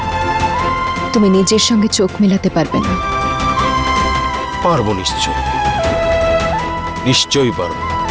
তুমি নিজের সঙ্গে চোখ মেলাতে পারবে না। পারবো, নিশ্চয়ই পারবো।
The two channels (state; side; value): identical; both; correlation 1.00